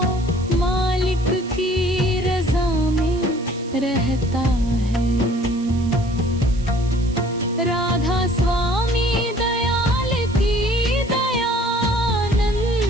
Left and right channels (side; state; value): right; noise; hiss, 21 dB below the sound